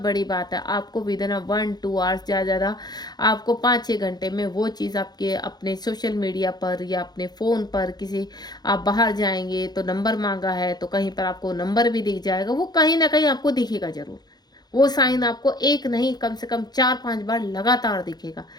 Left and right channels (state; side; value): late; right; 0.20 ms